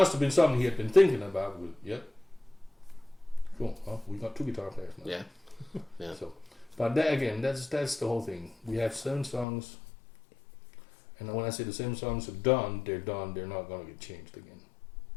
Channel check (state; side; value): drops out; right; at 9.5 s